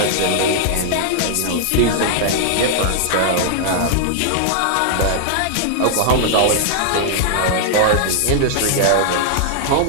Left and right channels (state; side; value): different; both; correlation -0.01